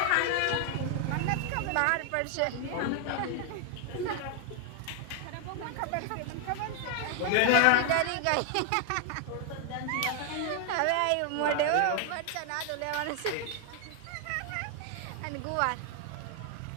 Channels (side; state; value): both; different; correlation 0.00